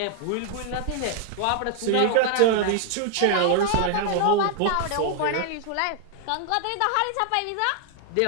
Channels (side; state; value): both; different; correlation 0.00